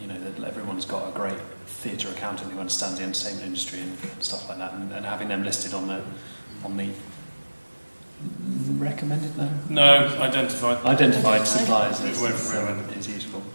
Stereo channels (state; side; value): inverted; both; correlation -1.00